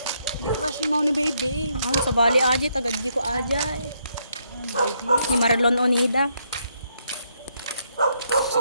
Di crush mo ni baby. sa bali aji, tagadji ko ajay. Ni Marlon Onida.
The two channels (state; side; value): inverted; both; correlation -0.75